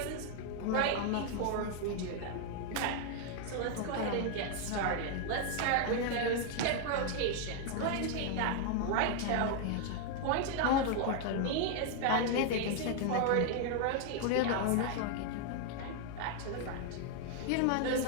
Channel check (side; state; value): both; different; correlation 0.00